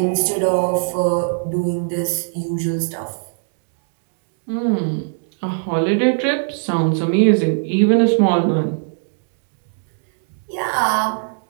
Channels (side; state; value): left; silent; 66 dB below the other